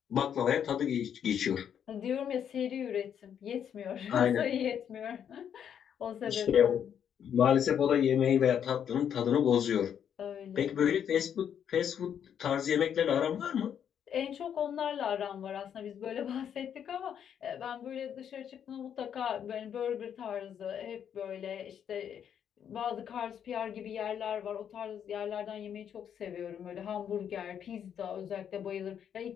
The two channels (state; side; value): quieter; right; 8.7 dB